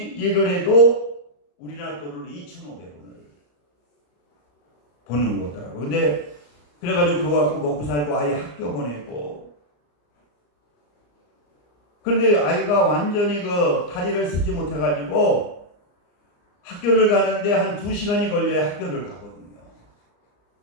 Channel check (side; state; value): right; late; 34 ms